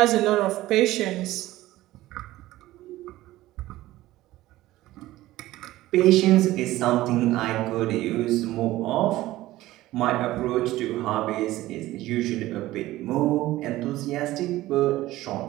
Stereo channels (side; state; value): left; quieter; 16.5 dB